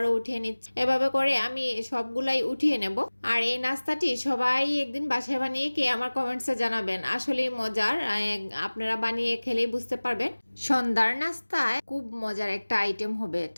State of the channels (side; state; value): both; inverted; correlation -1.00